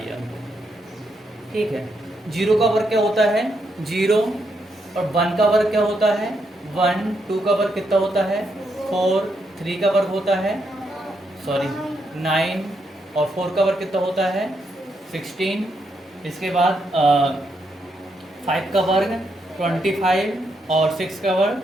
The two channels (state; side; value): normal; both; correlation 0.79